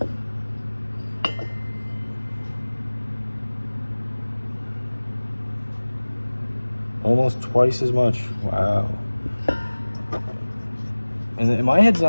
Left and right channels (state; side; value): inverted; both; correlation -1.00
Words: Almost twice as much. Wow. And my head's